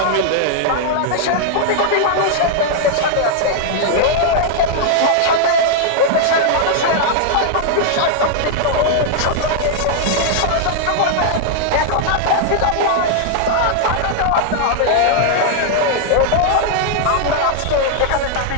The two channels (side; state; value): both; different; correlation -0.01